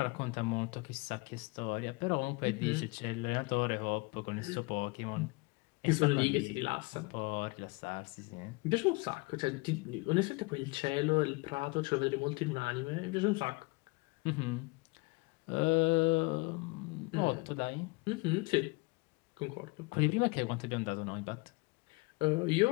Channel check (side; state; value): right; quieter; 26.8 dB